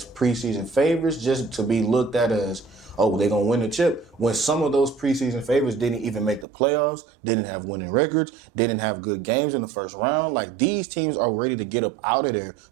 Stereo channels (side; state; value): left; drops out; at 6.5 s